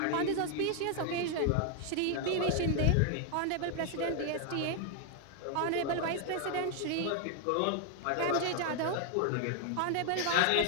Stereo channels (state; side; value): different; both; correlation 0.00